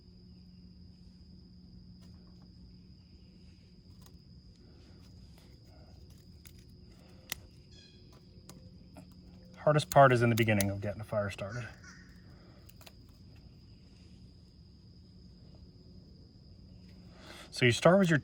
Hardest part is in the beginning of getting a fire started. So you start with your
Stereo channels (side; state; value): both; identical; correlation 1.00